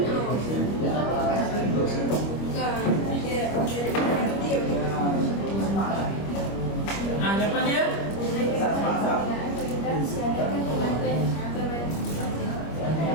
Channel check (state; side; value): late; right; 25 ms